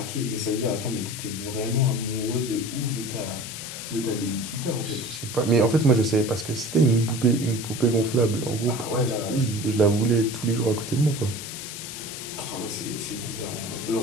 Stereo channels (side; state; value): left; noise; hiss, 9 dB below the sound